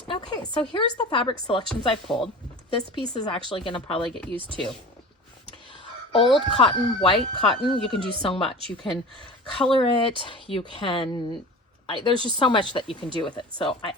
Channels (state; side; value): normal; both; correlation 0.36